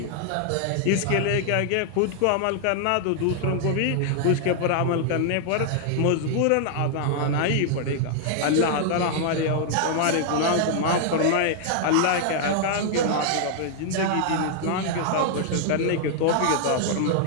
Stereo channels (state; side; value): different; both; correlation -0.01